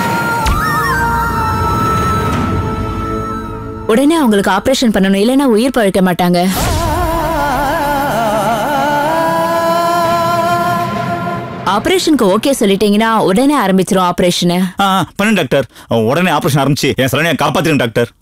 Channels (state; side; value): identical; both; correlation 1.00